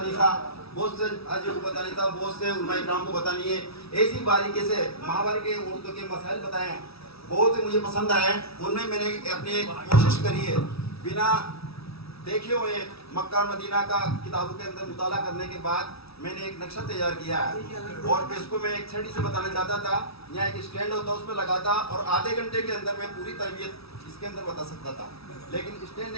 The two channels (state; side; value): late; right; 0.77 ms